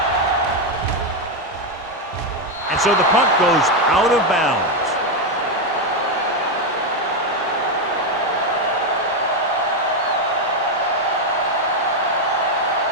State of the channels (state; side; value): normal; both; correlation 0.05